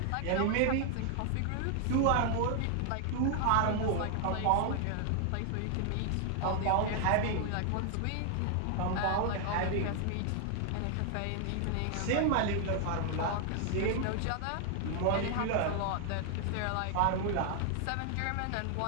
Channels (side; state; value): both; different; correlation 0.00